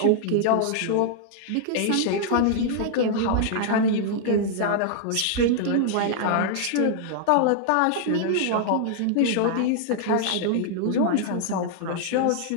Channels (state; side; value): different; both; correlation -0.01